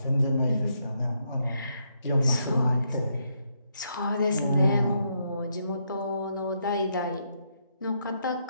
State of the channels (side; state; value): both; inverted; correlation -0.77